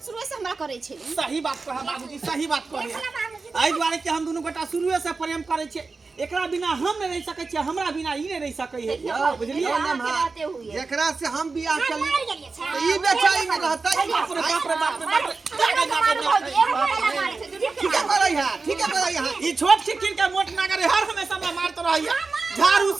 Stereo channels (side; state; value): left; quieter; 4.1 dB